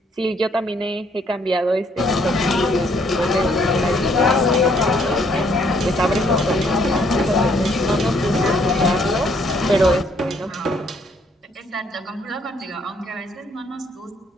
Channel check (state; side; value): normal; both; correlation 0.67